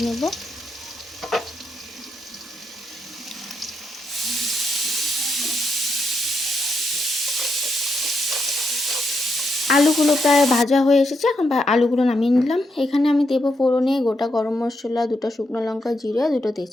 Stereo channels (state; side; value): normal; both; correlation 0.81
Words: নেব। আলুগুলো প্রায় ভাজা হয়ে এসেছে। এখন আলুগুলো নামিয়ে নিলাম। এখানে আমি দেবো ফোড়নে গোটা গরম মশলা, 2টা শুকনো লঙ্কা, জিরে, 2টো